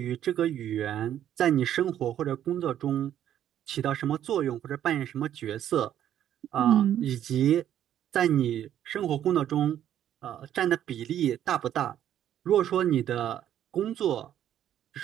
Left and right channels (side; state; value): left; quieter; 10.8 dB